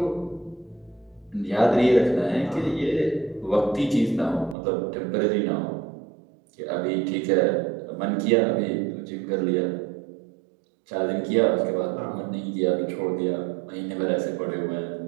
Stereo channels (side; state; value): left; drops out; at 4.5 s